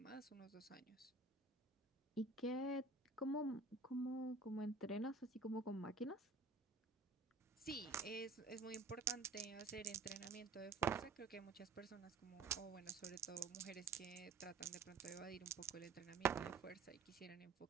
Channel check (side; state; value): left; quieter; 3.6 dB